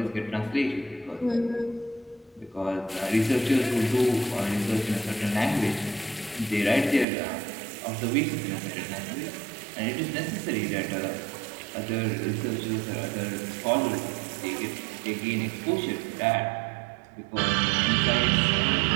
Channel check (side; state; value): left; drops out; at 7.1 s